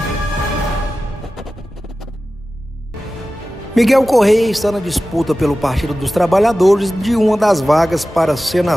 Miguel Correia está na disputa pelo Partido dos Trabalhadores de uma das vagas para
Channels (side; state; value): both; normal; correlation 0.95